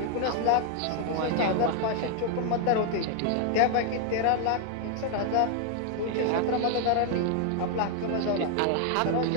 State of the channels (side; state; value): both; different; correlation 0.00